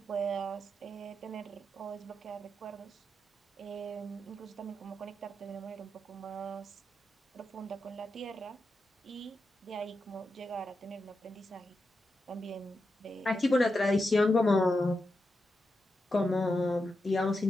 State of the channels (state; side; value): normal; both; correlation 0.87